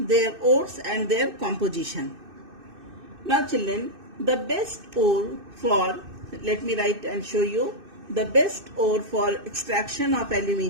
ores and their composition. Now children, the best ore for, let me write and show you, the best ore for extraction of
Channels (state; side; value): late; left; 2.6 ms